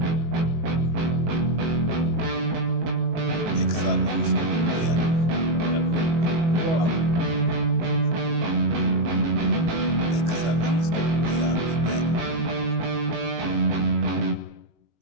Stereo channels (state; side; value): late; left; 18 ms